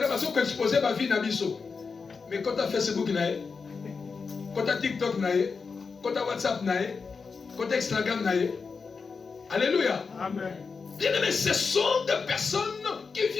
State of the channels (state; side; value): quieter; right; 5.0 dB